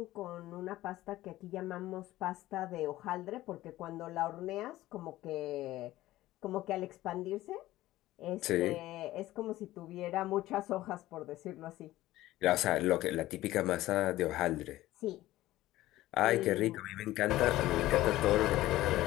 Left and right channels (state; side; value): quieter; right; 16.0 dB